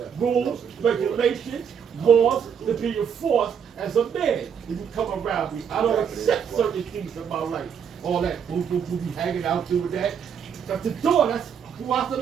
rules, regulations, laws to be enforced as a man. If you come around me, I don't accept certain things in my life. All that boo boo boo be hanging out doing that. At the door, that's who I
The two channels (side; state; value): left; quieter; 7.5 dB